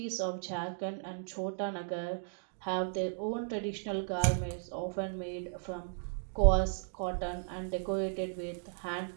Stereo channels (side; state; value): left; silent; digital silence